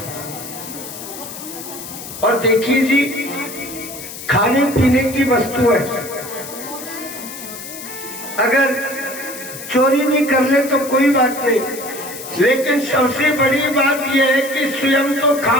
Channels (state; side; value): noise; left; hiss, 11 dB below the sound